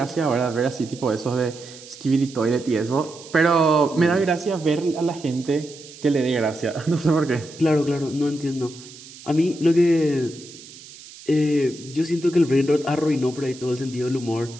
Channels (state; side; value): noise; right; hiss, 18 dB below the sound